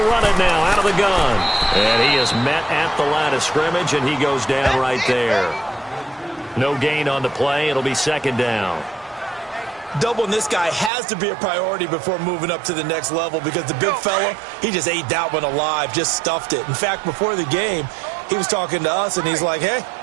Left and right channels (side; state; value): left; drops out; at 10.9 s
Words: run it now out of the gun. And he is met at the line of scrimmage, and he goes down right there. No gain on the play. It'll be 2nd down. Doubling this guy has to be a priority before moving up to the next level because the big fella, he just ate that one alive, just stuffed it. In fact, before the game, he was talking to us, and he's like, hey,